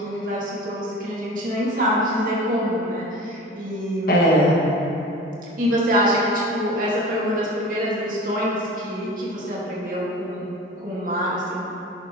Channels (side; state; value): both; normal; correlation 0.37